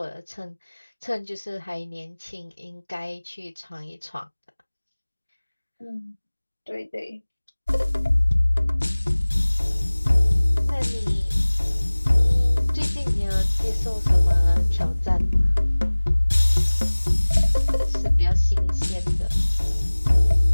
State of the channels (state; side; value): inverted; both; correlation -1.00